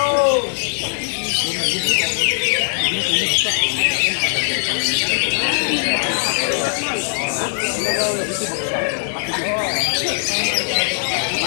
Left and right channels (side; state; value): right; silent; digital silence